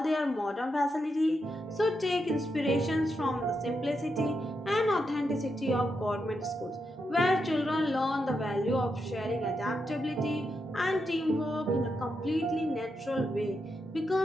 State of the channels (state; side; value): normal; both; correlation 0.84